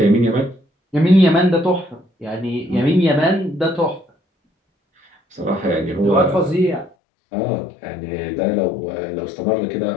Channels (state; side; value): drops out; right; at 7.0 s